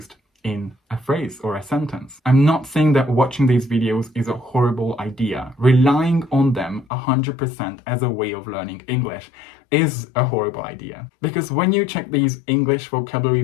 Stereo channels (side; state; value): right; drops out; at 6.9 s